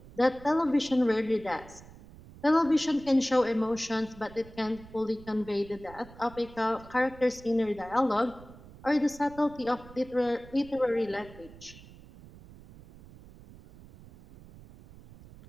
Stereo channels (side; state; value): right; noise; rumble, 20 dB below the sound